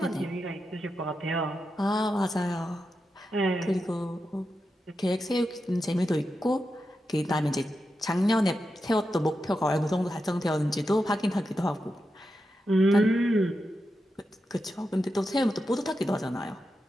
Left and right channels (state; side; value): normal; both; correlation 0.88